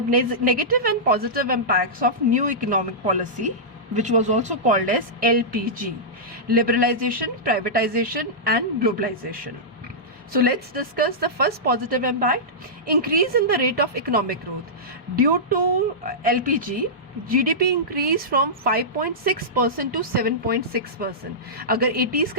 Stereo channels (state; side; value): normal; both; correlation -0.14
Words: and positive impacts of new economic policy, which was also called as LPG, liberalization, privatization and globalization. So let's discuss the first positive impact, increase in the rate of economic growth. Due to LPG, GDP increased from 5.6% to 7.6%. अगर 80s